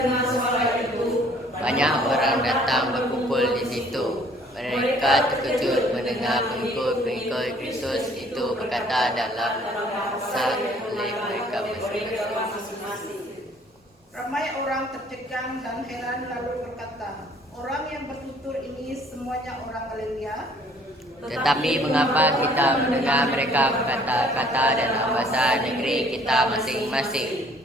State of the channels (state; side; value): normal; both; correlation 0.58